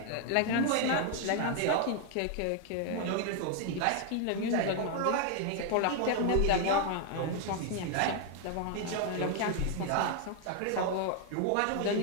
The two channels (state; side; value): different; both; correlation 0.00